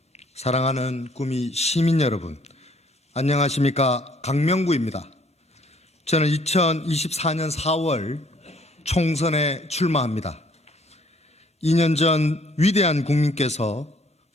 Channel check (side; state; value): both; normal; correlation 0.61